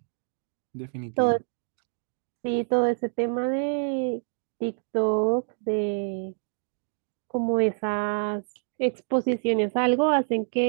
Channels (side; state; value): left; silent; digital silence